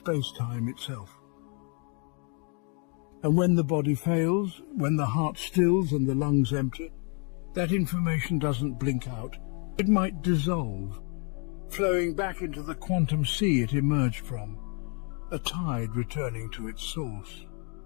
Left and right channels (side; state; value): right; quieter; 38.2 dB